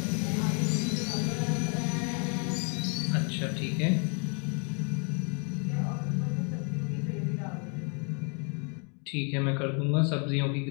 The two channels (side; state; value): right; quieter; 38.5 dB